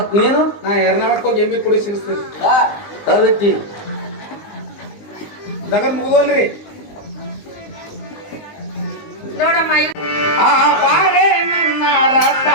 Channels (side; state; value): right; late; 19 ms